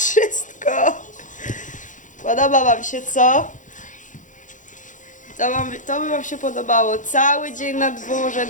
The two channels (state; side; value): late; right; 0.37 ms